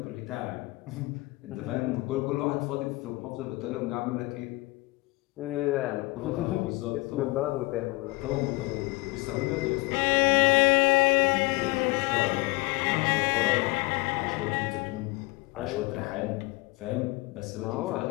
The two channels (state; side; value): quieter; right; 23.0 dB